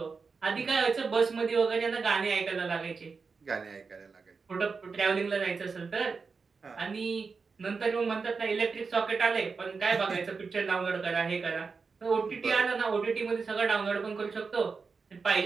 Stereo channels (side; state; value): left; quieter; 4.9 dB